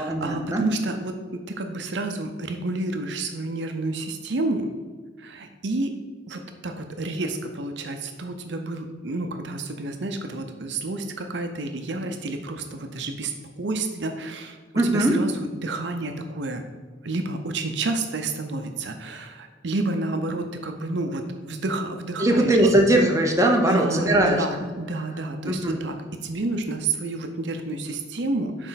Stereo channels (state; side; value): normal; both; correlation 0.54